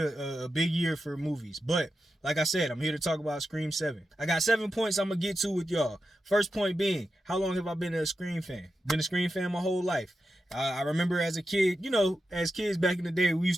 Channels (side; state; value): both; normal; correlation 0.89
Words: big year for movies. But like I said, I'm here to talk about Scream 7. I got 7 points I'm going to get to with y'all. First point being, how long have I been a Scream fan? Been a Scream fan my whole life. I remember as a kid, as kids back in the day, we